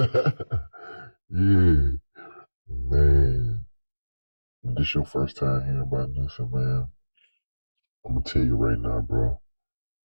Yeah, man. If this your first time hearing about Nussie, man, I'm gonna tell you right now, bro.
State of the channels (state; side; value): inverted; both; correlation -1.00